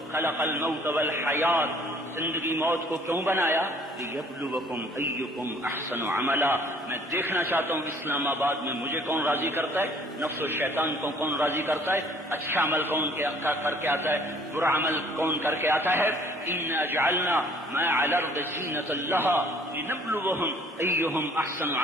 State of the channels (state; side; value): normal; both; correlation 0.56